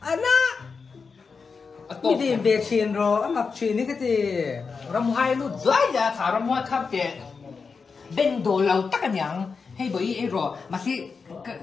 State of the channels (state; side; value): quieter; right; 5.1 dB